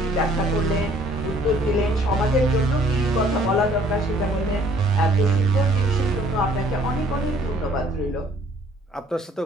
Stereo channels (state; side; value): normal; both; correlation 0.59